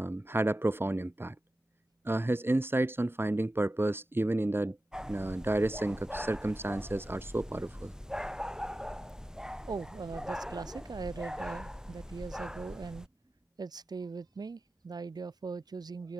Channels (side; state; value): both; normal; correlation 0.93